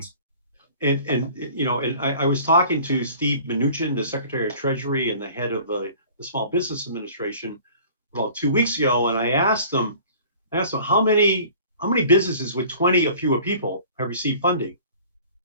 And I was talking to Steve Mnuchin, the Secretary of Treasury and the head of the Small Business Administration, about 2 weeks ago, and I asked them how many businesses with 20 or fewer people have received funding,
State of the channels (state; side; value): inverted; both; correlation -0.47